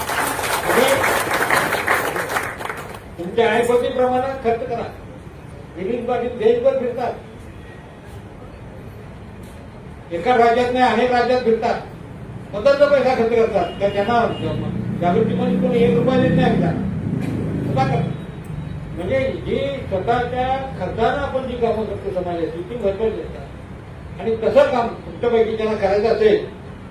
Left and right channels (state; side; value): identical; both; correlation 1.00